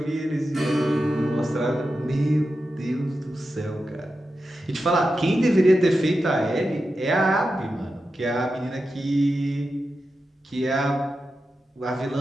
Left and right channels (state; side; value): normal; both; correlation 0.90